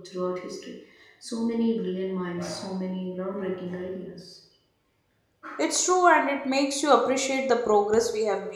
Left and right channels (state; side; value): identical; both; correlation 1.00